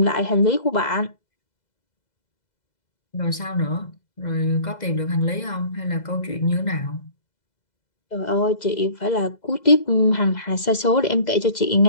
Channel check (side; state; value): right; late; 2.0 ms